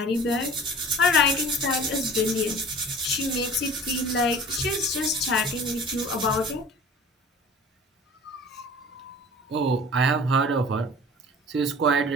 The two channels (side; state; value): both; normal; correlation 0.44